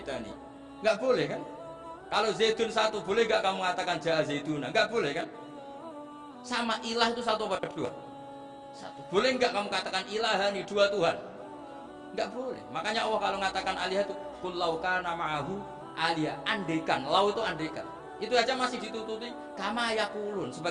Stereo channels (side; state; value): both; identical; correlation 1.00